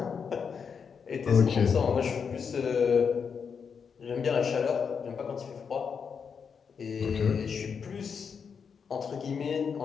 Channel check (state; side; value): quieter; right; 6.3 dB